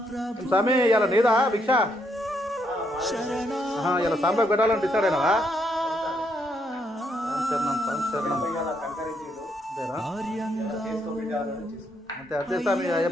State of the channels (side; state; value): both; normal; correlation 0.75